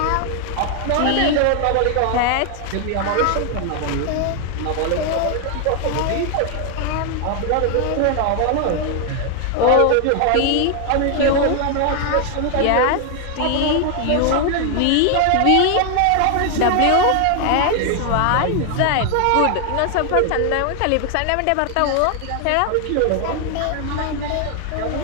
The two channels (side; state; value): both; different; correlation 0.00